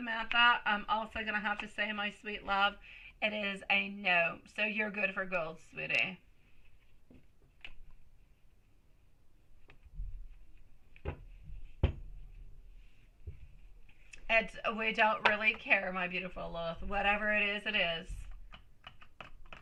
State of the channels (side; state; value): both; identical; correlation 1.00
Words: I'm also going to have to say, my sweet love, it is a no. So you're good for gold, sweetie. We don't really care, my beautiful Lilith. Whatever it is, it is.